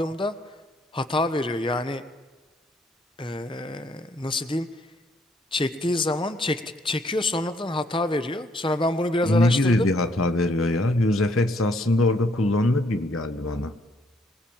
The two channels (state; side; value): normal; both; correlation 0.68